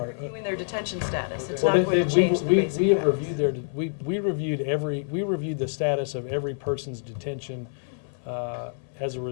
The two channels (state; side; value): silent; right; 59 dB below the other